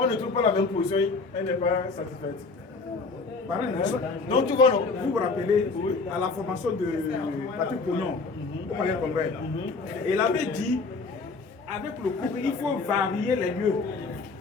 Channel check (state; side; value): quieter; right; 4.1 dB